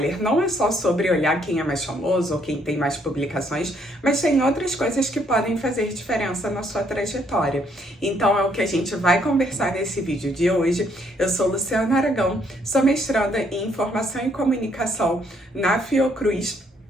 Não é só sobre olhar quem é mais famoso ou quem tem mais publicações, mas tem outras coisas que podem fazer diferença na sua trajetória. Então é o que a gente vai conversar nesse vídeo de hoje. Eu sou Luciana Aragão, sou mestranda em Informação e Comunicação na Fiocruz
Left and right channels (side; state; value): both; normal; correlation 0.69